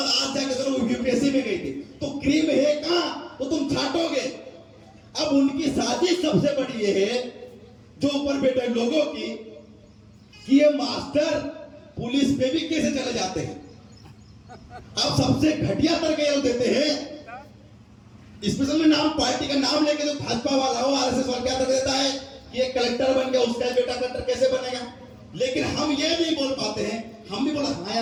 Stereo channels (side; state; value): both; identical; correlation 1.00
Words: आज जाकर तो यूपीएससी में गई थी। तो क्रीम है कहां? तो तुम छाटोगे। अब उनकी साजिश सबसे बड़ी ये है जो ऊपर बैठे लोगों की, कि ये मास्टर पुलिस पे भी कैसे चले जाते हैं। अब सबसे घटिया तरीके देते हैं, स्पेशल में नाम, पार्टी का नाम लेके जो भाजपा वाला हो, आरएसएस वाला क्या कर देता है कि ये कलेक्टर बन गया, उसका बेटा कलेक्टर कैसे बनेगा। लेकिन हम ये नहीं बोल पाते हैं। हम भी बोला हाँ